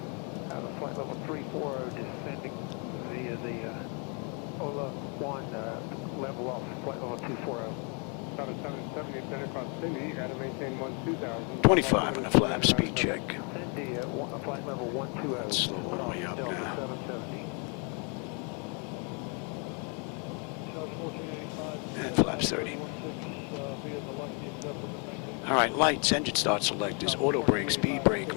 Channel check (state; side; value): quieter; right; 36.3 dB